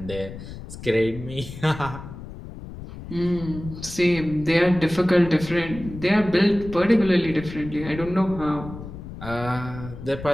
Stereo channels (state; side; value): noise; left; rumble, 12 dB below the sound